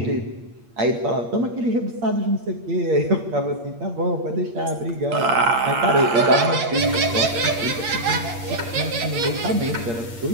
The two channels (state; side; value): late; left; 8.6 ms